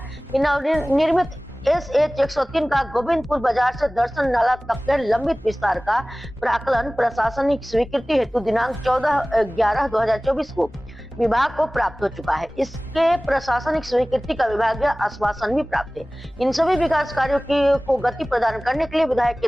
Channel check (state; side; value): normal; both; correlation 0.98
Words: कि नवनिर्मित SH 103 का गोविंदपुर बाजार से दर्शन नाला तक के लंबित विस्तार का प्राक्कलन प्रशासनिक स्वीकृति हेतु दिनांक 14/11/2024 को विभाग को प्राप्त हो चुका है। इसके प्रशासनिक स्वीकृति का विभागीय आश्वासन भी प्राप्त है। इन सभी विकास कार्यों को गति प्रदान करने के लिए विधायक के